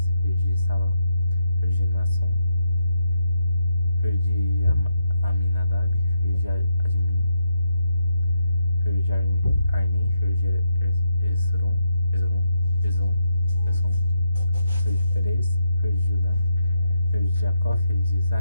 filho de Salã, filho de Nasson, filho de Aminadab, filho de Admin, filho de Arni, filho de Esron, filho de Perez, filho de Judá, filho de Jacó, filho de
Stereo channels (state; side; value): inverted; both; correlation -0.82